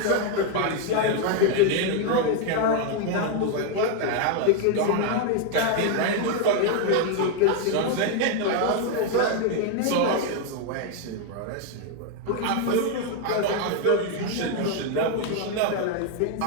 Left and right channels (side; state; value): both; different; correlation 0.01